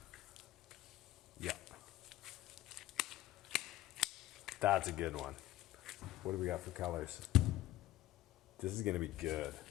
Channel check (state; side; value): quieter; right; 14.9 dB